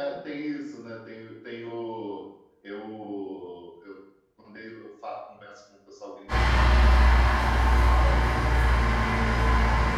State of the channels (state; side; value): identical; both; correlation 1.00